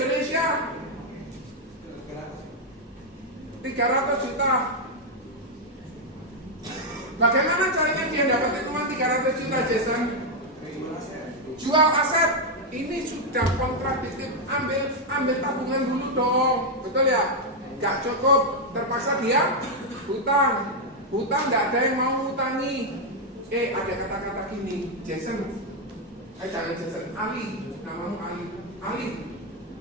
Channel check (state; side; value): normal; both; correlation 0.00